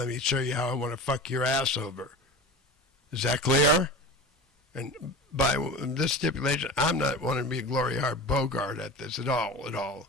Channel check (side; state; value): both; normal; correlation 0.32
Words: me show you how I want to fuck your ass over. Is that clear? And by this stipulation, I'm not wanting to be a Glory Hart Bogart at this at all.